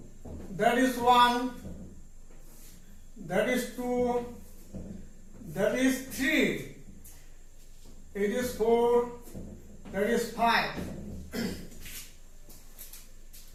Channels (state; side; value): identical; both; correlation 1.00